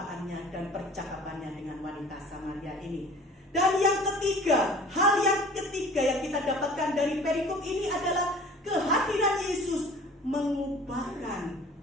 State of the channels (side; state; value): both; normal; correlation 0.47